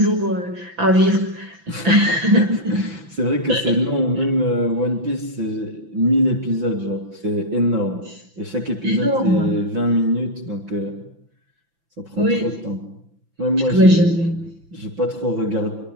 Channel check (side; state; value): left; late; 5.9 ms